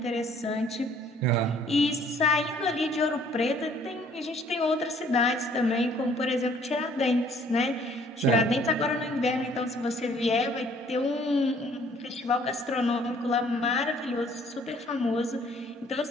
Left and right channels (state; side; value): normal; both; correlation 0.59